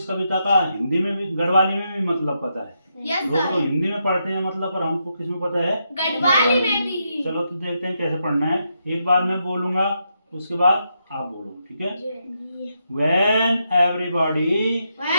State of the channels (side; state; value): both; inverted; correlation -0.82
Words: कविता का हिंदी में भी, गढ़वाली में भी मतलब पता है। लोग तो हिंदी में पढ़ते हैं मतलब, पर हमको किस में पता है? गढ़वाली में भी। चलो तो देखते हैं कैसे पढ़ना है। एक बार मैं बोलूंगा, उसके बाद आप बोलो, ठीक है? When everybody